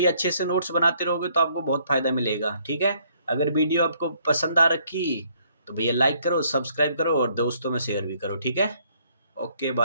अच्छे से नोट्स बनाते रहोगे तो आपको बहुत फ़ायदा मिलेगा, ठीक है। अगर वीडियो आपको पसंद आ रखी तो भैया लाइक करो, सब्सक्राइब करो और दोस्तों में शेयर भी करो, ठीक है। Okay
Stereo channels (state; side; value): inverted; both; correlation -0.66